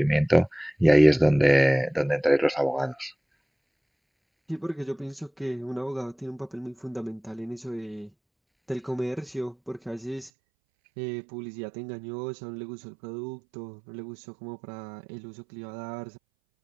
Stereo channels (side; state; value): left; drops out; at 10.3 s